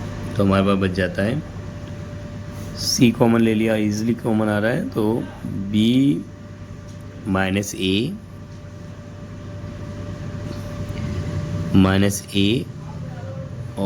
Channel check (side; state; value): both; identical; correlation 1.00